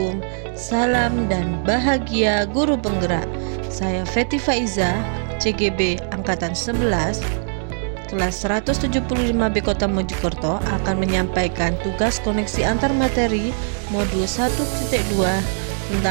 salam dan bahagia guru penggerak. Saya Feti Faiza, CGB Angkatan 11, kelas 175B Kota Mojokerto akan menyampaikan tugas koneksi antar materi modul 1.2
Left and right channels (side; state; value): left; silent; digital silence